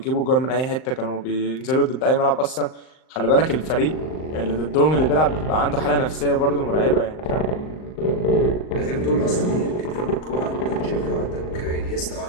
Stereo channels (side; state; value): right; late; 39 ms